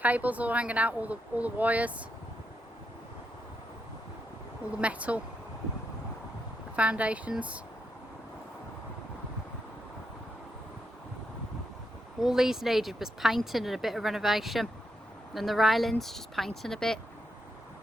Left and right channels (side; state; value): both; normal; correlation 0.82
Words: all hanging out, all the wires. All the metal. The foundations. All these needed was painting and a bit of renovation. And the railings, just painting a bit.